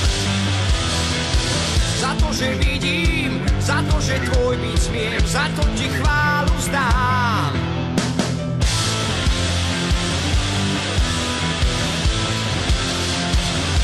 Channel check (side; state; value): both; identical; correlation 1.00